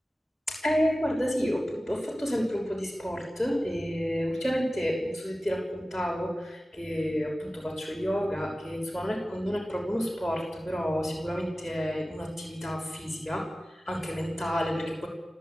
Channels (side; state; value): both; normal; correlation 0.96